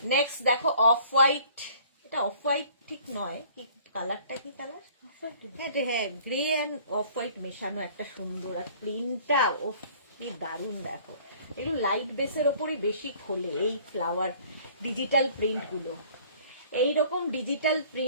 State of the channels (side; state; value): both; inverted; correlation -0.54